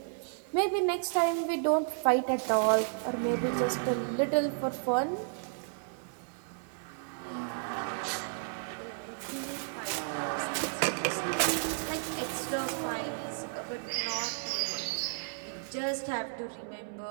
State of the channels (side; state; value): left; silent; digital silence